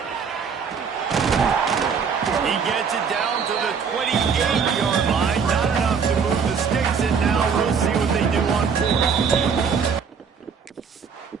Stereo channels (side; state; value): left; quieter; 6.2 dB